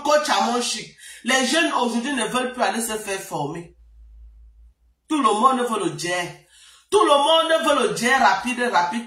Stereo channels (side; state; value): both; identical; correlation 1.00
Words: Coach Amonchi. Les jeunes aujourd'hui ne veulent plus aller se faire former. Tout le monde veut le jet. Tout le monde veut le jet